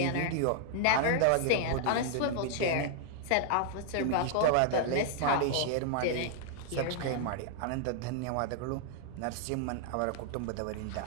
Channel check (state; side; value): different; both; correlation -0.01